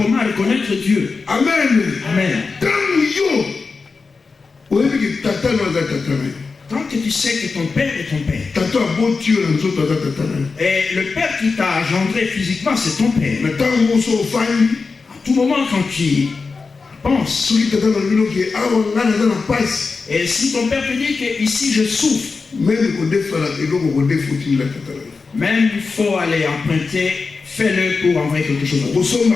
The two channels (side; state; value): right; quieter; 4.5 dB